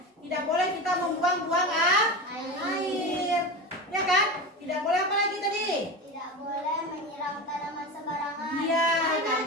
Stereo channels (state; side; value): normal; both; correlation 0.24